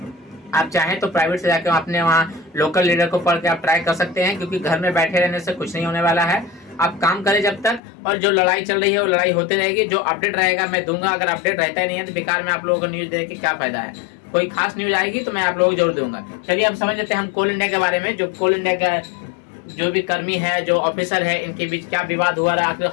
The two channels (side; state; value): right; drops out; at 7.8 s